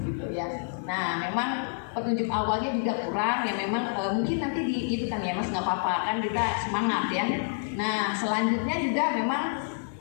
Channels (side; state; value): right; silent; digital silence